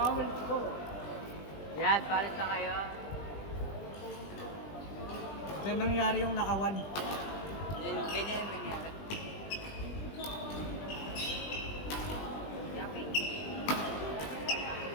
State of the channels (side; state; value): right; late; 20 ms